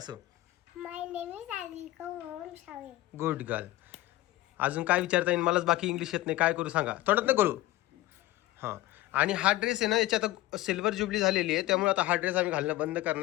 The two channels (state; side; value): quieter; right; 17.1 dB